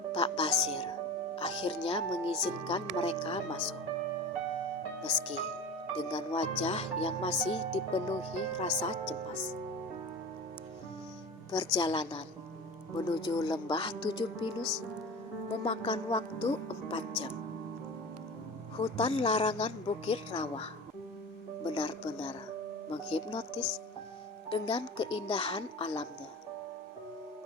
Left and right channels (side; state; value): both; normal; correlation 0.33